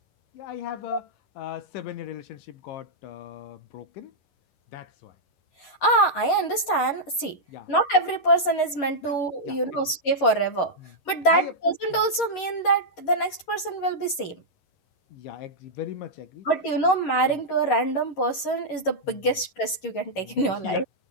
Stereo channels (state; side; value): late; right; 11 ms